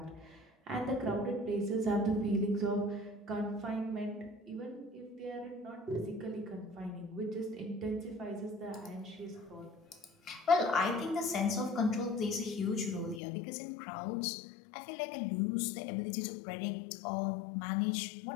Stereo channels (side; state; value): right; drops out; at 13.2 s